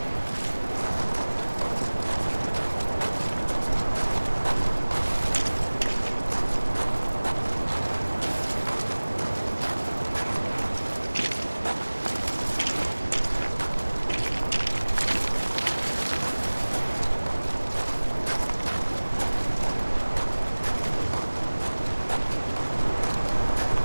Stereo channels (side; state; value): both; inverted; correlation -1.00